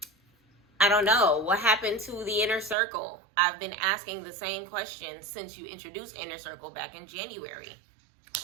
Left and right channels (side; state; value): left; drops out; at 2.8 s